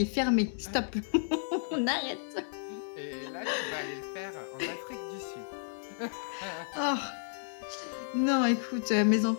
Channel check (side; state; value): right; silent; digital silence